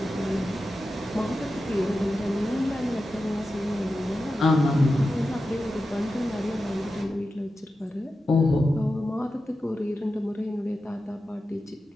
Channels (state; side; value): normal; both; correlation 0.91